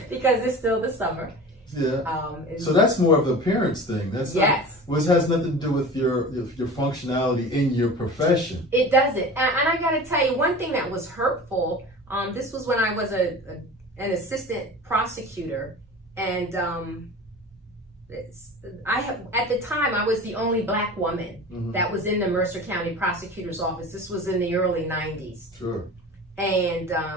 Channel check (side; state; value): both; normal; correlation 0.36